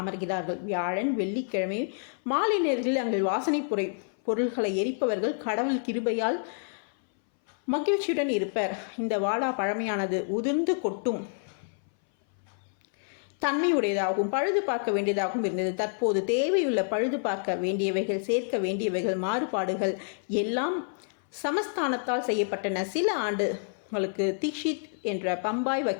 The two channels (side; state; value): right; silent; 59 dB below the other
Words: அமர்கிறார்கள். வியாழன், வெள்ளிக்கிழமை மாலை நேரத்தில் அங்கு வாசனை பொருள்களை எரிப்பவர்கள் கடவுள் கிருபையால் மகிழ்ச்சியுடன் இருப்பர். இந்த வாடா பழமையானது, உதிர்ந்து கொட்டும் தன்மையுடையதாகவும் பழுது பார்க்க வேண்டியதாகவும் இருந்தது. தற்போது தேவையுள்ள பழுது பார்க்க வேண்டியவைகள், சேர்க்க வேண்டியவைகள், மாறுபாடுகள் எல்லாம் சமஸ்தானத்தால் செய்யப்பட்டன. சில ஆண்டுகளுக்கு தீக்ஷித் என்ற பம்பாய்